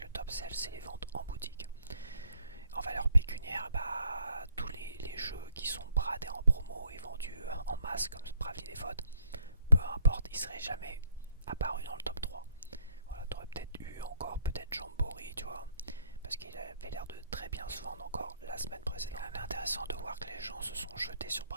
le top sell c'est les ventes en boutique. En valeur pécuniaire, bah, tous les jeux qui sont bradés en promo et vendus en masse comme Bravely Default, peu importe, ils seraient jamais apparus dans le top 3. Voilà, t'aurais peut-être eu encore peut-être Jamboree, tu vois, parce qu'il avait l'air de très bien se vendre encore la semaine précédente. C'est intéressant de voir que les gens se sont jetés sur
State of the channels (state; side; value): inverted; both; correlation -0.67